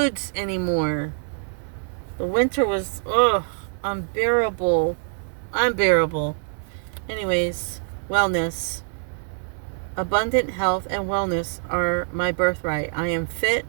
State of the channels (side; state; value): left; silent; digital silence